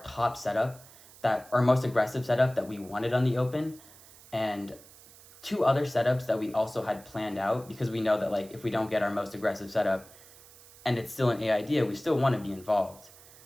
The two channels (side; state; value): right; noise; hiss, 22 dB below the sound